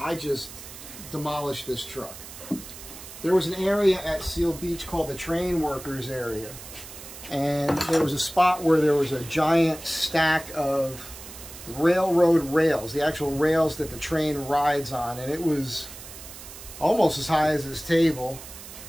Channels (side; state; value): right; noise; hiss, 14 dB below the sound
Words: just demolished this truck. There was an area at Seal Beach called the train workers area, and there was a spot where there was a giant stack of railroad rails, the actual rails that the train rides on, and it was almost as high as this table.